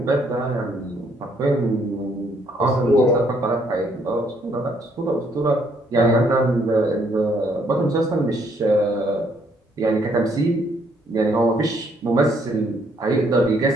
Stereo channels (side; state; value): both; normal; correlation 0.68